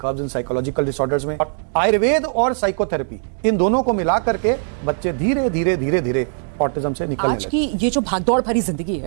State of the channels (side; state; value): left; silent; digital silence